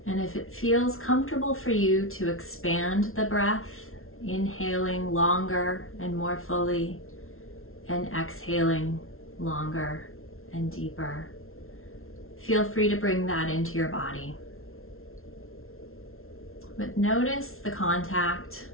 And if it feels comfortable for you to expand the breath, inhaling longer and more fully and exhaling longer and deeper, feel free to bring that into your body. But notice the contact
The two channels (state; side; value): late; right; 0.62 ms